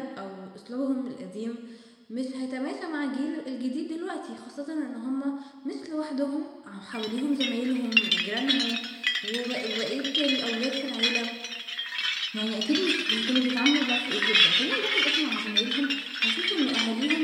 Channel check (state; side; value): identical; both; correlation 1.00